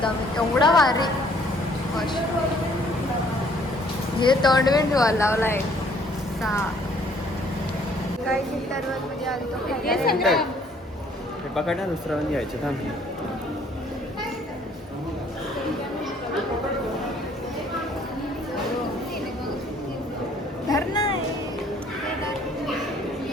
आम्ही. एवढा भारी. हे तोंडविंड लावला आहे. काही चिंतावर म्हणजे आलो पकडा दुसरा घ्यायचं थांब.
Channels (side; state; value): both; normal; correlation 0.61